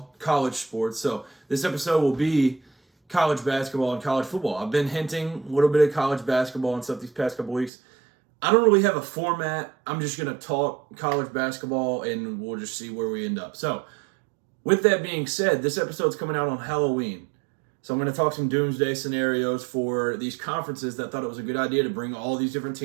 college sports. So this episode will be college basketball and college football. I've been hinting a little bit of college basketball and stuff these past couple weeks. I don't really have a format. I'm just going to talk college basketball and we'll just see where we end up. So with that being said, this episode's coming out on Halloween. So I'm going to talk some doomsday scenarios for these conferences that thought it was a good idea to bring all these different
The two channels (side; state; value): left; drops out; at 7.7 s